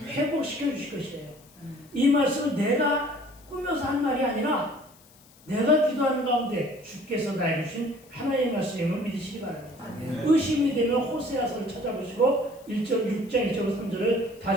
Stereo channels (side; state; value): left; noise; hiss, 27 dB below the sound